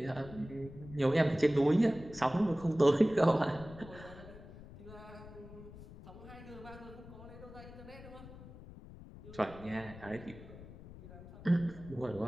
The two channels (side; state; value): left; noise; rumble, 16 dB below the sound